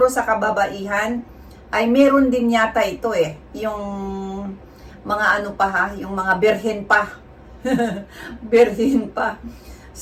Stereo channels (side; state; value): both; identical; correlation 1.00